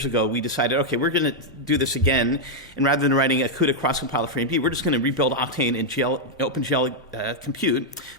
ago, we decided, okay, we're going to do this again. And rather than writing a CUDA cross-compiler for AMD, we're just going to rebuild Octane in OpenGL Compute,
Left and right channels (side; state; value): both; normal; correlation -0.03